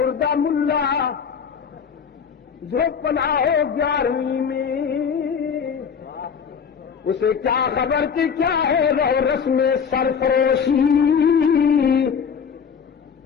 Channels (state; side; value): quieter; right; 6.7 dB